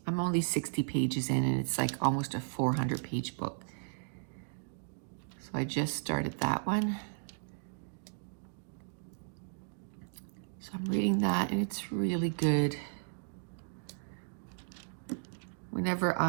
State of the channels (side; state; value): left; silent; digital silence